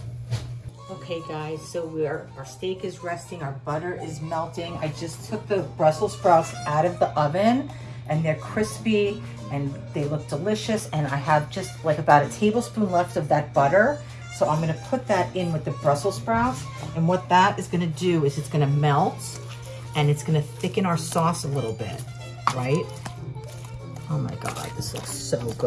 Okay, guys, so our steak is resting, our butter is melting. I just took the Brussels sprouts out of the oven, and they're crispy, and they look delicious, and I have just like about a tablespoon left of that butter. So I'm gonna put that in with the Brussels sprouts, and what that is gonna do is it's gonna melt, and it's gonna thicken our sauce a little bit, right? Oh my God, this looks so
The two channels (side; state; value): both; identical; correlation 1.00